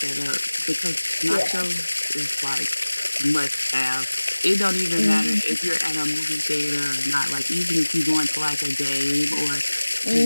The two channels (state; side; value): inverted; both; correlation -1.00